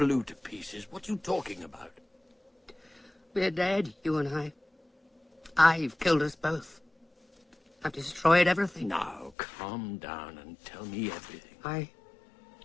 to pieces? What are you talking about? We're dead, you and I. I've killed us both. I've destroyed everything. Now, calm down and tell me everything. I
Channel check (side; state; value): right; drops out; at 9.3 s